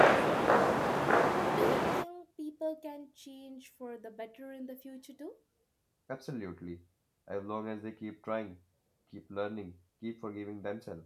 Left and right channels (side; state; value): both; identical; correlation 1.00